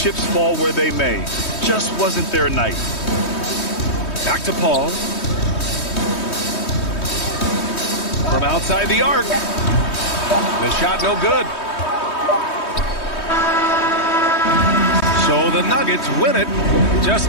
fall where they may. Just wasn't their night. Back to Paul. From outside the arc. The shot no good. So the Nuggets win it.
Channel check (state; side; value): late; right; 3.2 ms